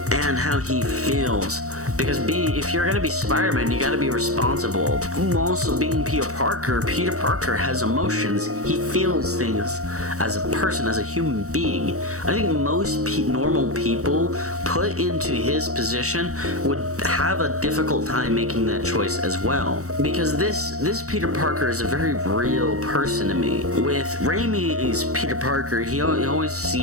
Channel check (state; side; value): late; left; 0.65 ms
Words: and how he feels. Because if you're gonna be Spider-Man, you gotta be responsible. Also, being Peter Parker has emotions. He feels things as a person, as a human being. I think most normal people put into his position would have a difficult time making that choice as well. Because this Peter Parker is a very real person to me. With Raimi's Peter Parker, he always